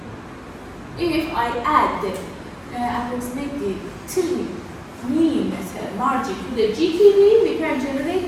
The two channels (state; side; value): identical; both; correlation 1.00